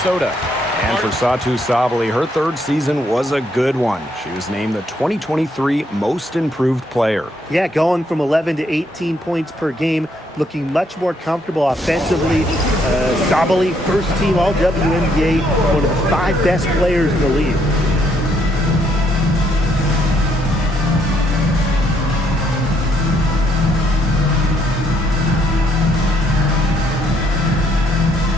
And for Satu Sabali, her third season was a good one. She was named the 2023 Most Improved Player. Yeah, going from 11 to 18 points per game, looking much more comfortable offensively. Sabali, first team All-WNBA, one of the 5 best players in the league.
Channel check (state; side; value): normal; both; correlation 0.72